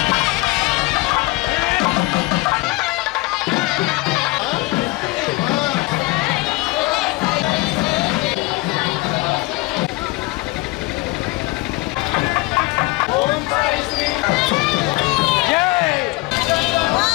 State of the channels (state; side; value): quieter; right; 22.3 dB